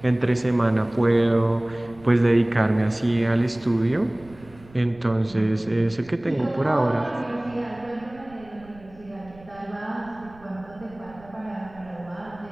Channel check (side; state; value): right; noise; rumble, 23 dB below the sound